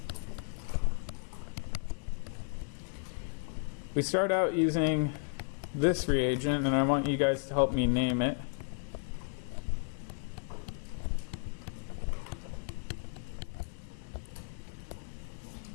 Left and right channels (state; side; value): silent; right; 55 dB below the other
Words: We start out using this reagent, and I want you guys to help me name it.